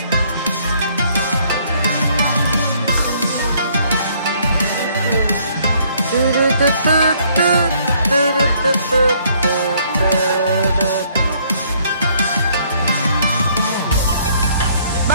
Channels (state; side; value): inverted; both; correlation -0.64